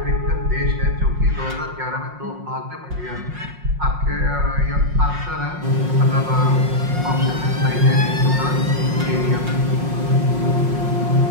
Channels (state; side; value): late; left; 5.6 ms